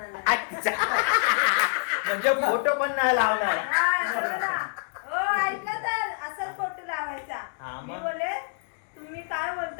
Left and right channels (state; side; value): silent; right; digital silence